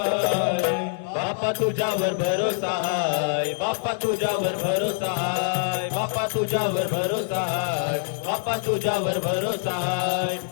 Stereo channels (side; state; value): right; silent; 62 dB below the other